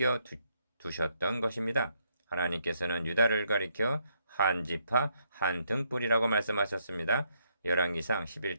두셨던 것입니다. 하나님께서는 유다를 가리켜 한 지파 한 등불이라고 말씀하셨습니다. 열왕기상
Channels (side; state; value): both; inverted; correlation -0.74